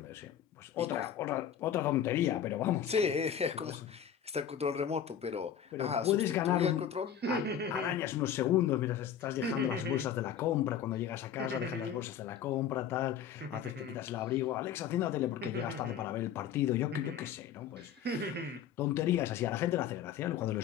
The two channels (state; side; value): quieter; right; 8.9 dB